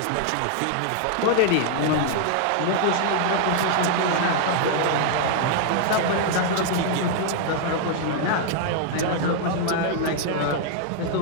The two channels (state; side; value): different; both; correlation 0.00